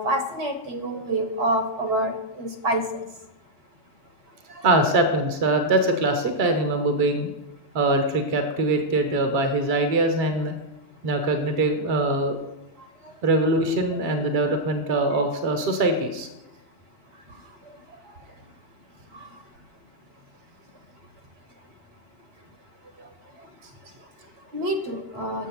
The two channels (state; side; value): late; left; 2.9 ms